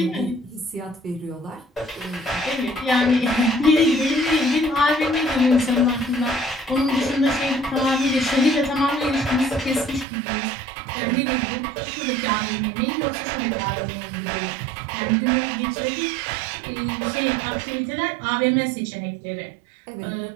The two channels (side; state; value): left; drops out; at 10.1 s